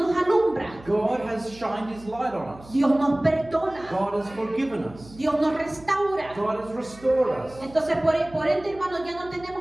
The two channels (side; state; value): right; noise; hum, 20 dB below the sound